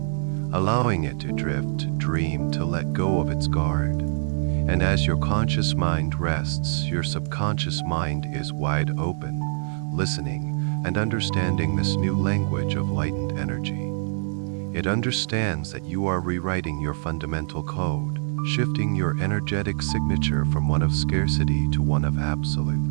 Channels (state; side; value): silent; left; 62 dB below the other